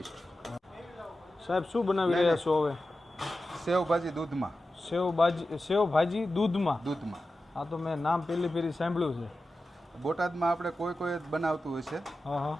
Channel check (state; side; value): normal; both; correlation 0.93